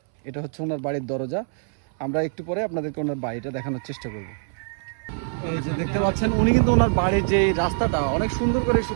এটা হচ্ছে ওনার বাড়ির দরজা। আমরা একটু পরে আপনাদেরকে ওনার বাড়িটা দেখানোর চেষ্টা করব। এই যে দেখতে পাচ্ছেন, উনি কিন্তু ওনার বাড়ির যে রাস্তাটা অনেক সুন্দর করে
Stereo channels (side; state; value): left; silent; 62 dB below the other